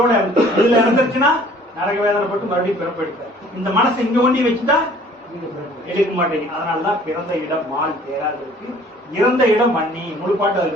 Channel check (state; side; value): normal; both; correlation 0.53